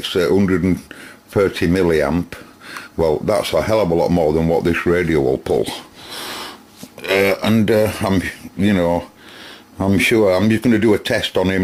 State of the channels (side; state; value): both; identical; correlation 1.00